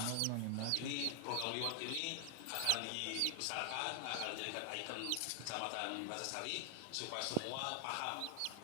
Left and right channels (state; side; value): different; both; correlation 0.00